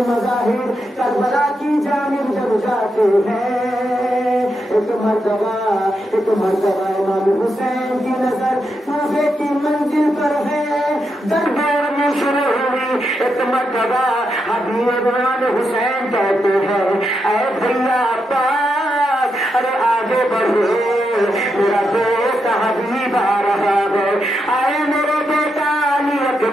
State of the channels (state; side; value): normal; both; correlation 0.84